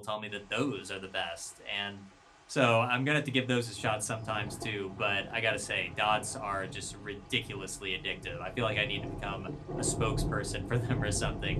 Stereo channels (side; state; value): both; identical; correlation 1.00